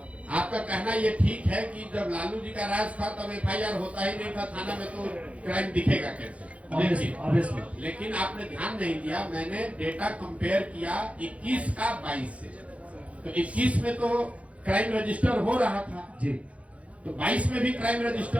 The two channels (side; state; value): left; late; 0.064 ms